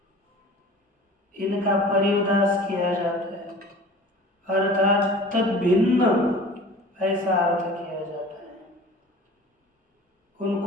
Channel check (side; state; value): both; normal; correlation 0.42